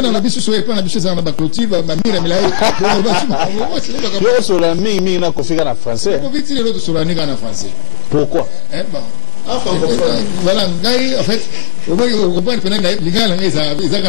on a vu sur les plans, on a vu sur la baclotive, ma mire mais là. Yo sur la mi na configure en français. Pourquoi vite les autres sur la nègre en français? Pourquoi? Voilà, en fait, on comprend que les gars, ils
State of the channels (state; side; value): silent; right; digital silence